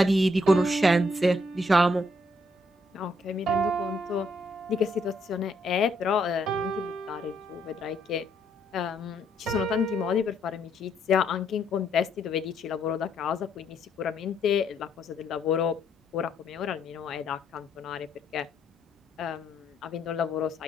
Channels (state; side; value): normal; both; correlation 0.72